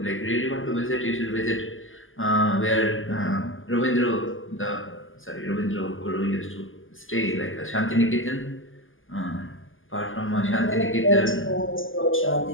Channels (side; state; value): right; late; 0.58 ms